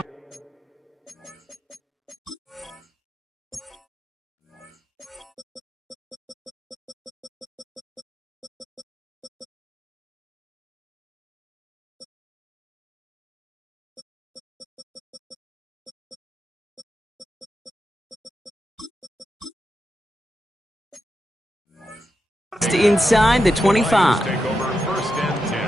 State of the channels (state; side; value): normal; both; correlation 0.88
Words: Inside the 25. Take over first and 10